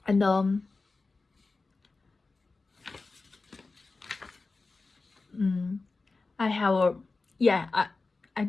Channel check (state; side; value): quieter; right; 3.8 dB